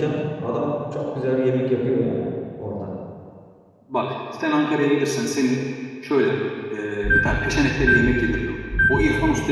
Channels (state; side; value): identical; both; correlation 1.00